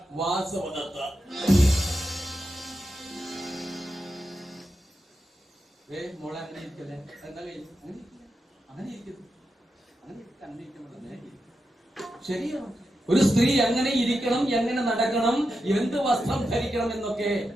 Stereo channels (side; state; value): both; normal; correlation 0.88